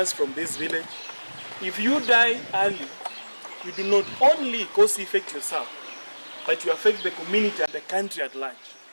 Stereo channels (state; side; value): inverted; both; correlation -1.00